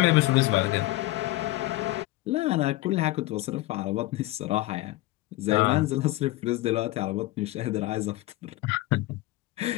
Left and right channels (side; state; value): right; quieter; 18.4 dB